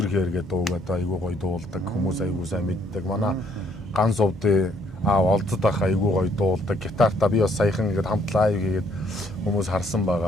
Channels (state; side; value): normal; both; correlation 0.67